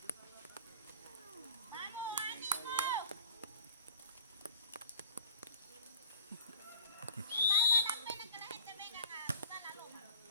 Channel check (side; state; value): both; inverted; correlation -0.44